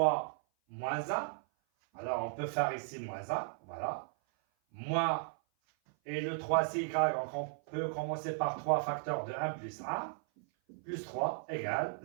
moins 1. Alors on peut faire ici moins 1, voilà. Moins, et le 3 c'est y, donc on peut commencer par 3 facteurs de 1 plus 1, plus 3 égale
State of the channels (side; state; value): left; silent; 54 dB below the other